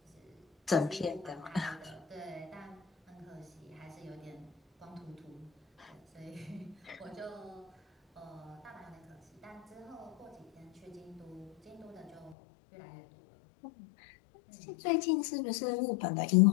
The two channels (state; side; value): drops out; right; at 12.4 s